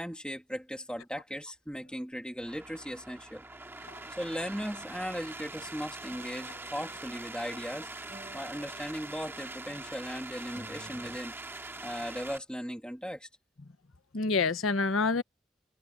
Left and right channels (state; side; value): normal; both; correlation 0.53